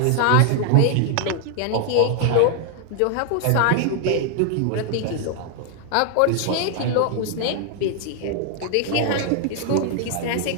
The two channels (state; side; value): different; both; correlation 0.00